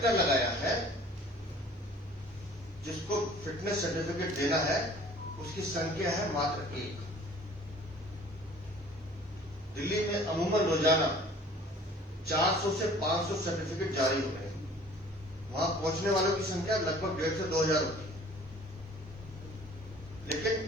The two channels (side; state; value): both; normal; correlation 0.50